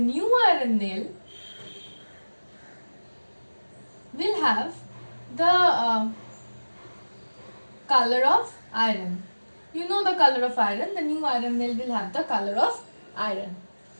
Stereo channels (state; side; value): inverted; both; correlation -1.00